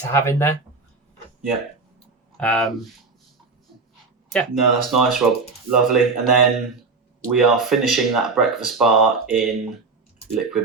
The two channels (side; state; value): left; quieter; 4.2 dB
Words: have in there. Yeah. No, that's nice, Rob. Lovely. And then we are finishing that breakfast bar in